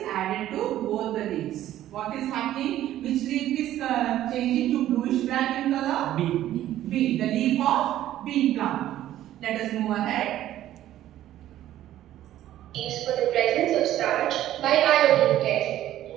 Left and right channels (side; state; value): left; quieter; 13.0 dB